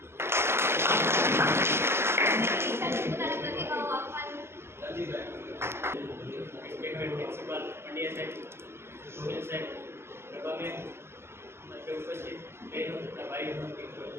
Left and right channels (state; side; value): late; left; 0.12 ms